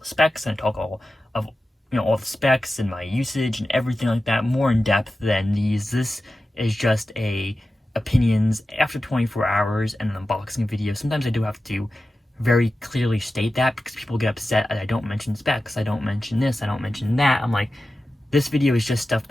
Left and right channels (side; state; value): both; normal; correlation 0.94